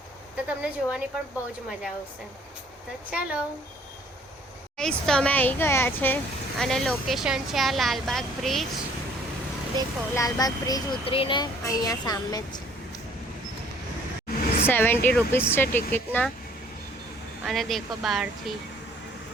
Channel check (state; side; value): normal; both; correlation 0.58